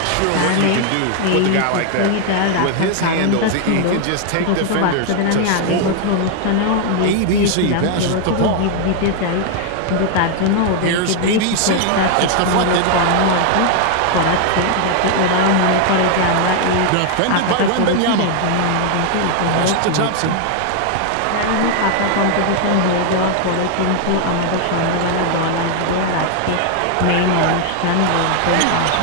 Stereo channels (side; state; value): both; different; correlation 0.00